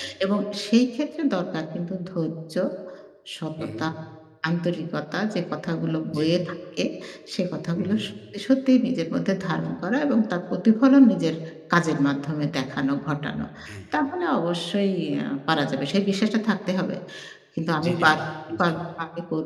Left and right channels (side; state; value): both; identical; correlation 1.00